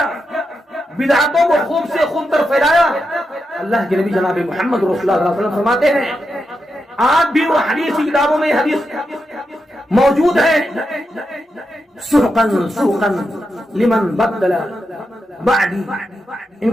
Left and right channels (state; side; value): normal; both; correlation 0.86